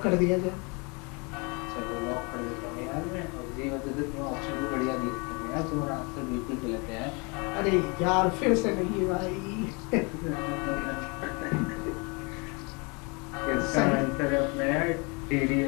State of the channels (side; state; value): right; quieter; 30.8 dB